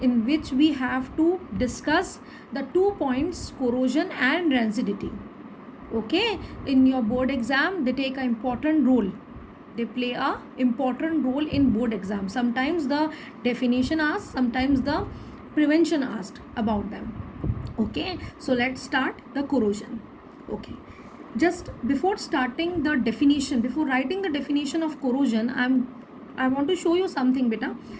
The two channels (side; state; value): both; identical; correlation 1.00